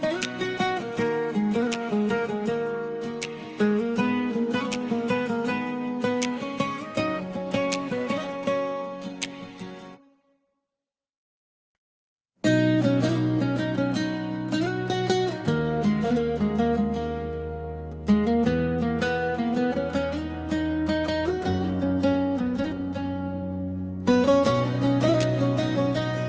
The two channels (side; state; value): both; identical; correlation 1.00